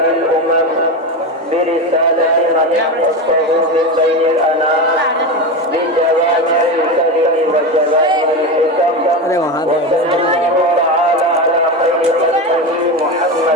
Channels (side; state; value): both; normal; correlation 0.19